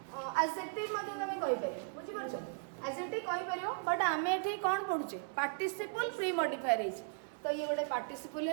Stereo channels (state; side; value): silent; left; 53 dB below the other